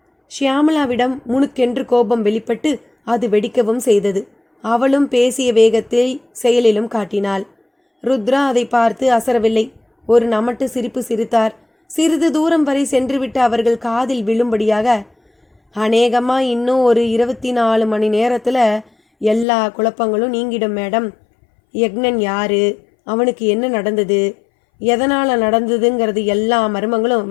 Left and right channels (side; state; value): right; drops out; at 19.5 s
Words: ஷியாமலாவிடம் முணுக்கென்று கோபம் வெளிப்பட்டு அது வெடிக்கவும் செய்தது. அவளும் பேசிய வேகத்தில் செயலிலும் காட்டினாள். ருத்ரா அதை பார்த்து அசரவில்லை. ஒரு நமட்டு சிரிப்பு சிரித்தார். சிறிது தூரம் வரை சென்றுவிட்டு அவர்கள் காதில் விழும்படியாக, அநேகமா இன்னும் ஒரு 24 மணி நேரத்தில் எல்லா குழப்பங்களும் நீங்கிடும் மேடம். யக்னன் யாரு, அவனுக்கு என்ன நடந்தது, எதனால் நடந்ததுங்கிறது எல்லா மர்மங்களும்